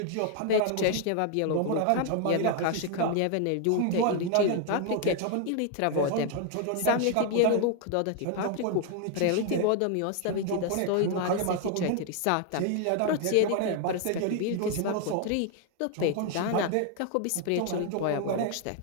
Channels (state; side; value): different; both; correlation 0.00